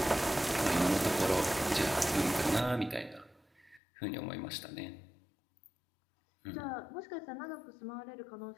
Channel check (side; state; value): right; drops out; at 3.8 s